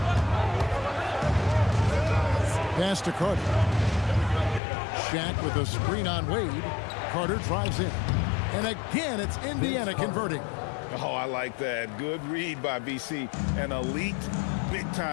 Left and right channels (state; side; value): drops out; right; at 4.6 s